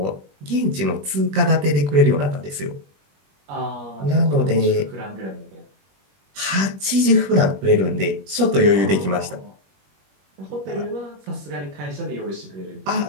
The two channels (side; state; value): left; late; 21 ms